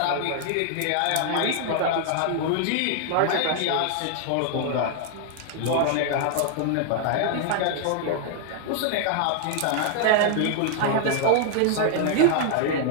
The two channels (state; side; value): different; both; correlation 0.00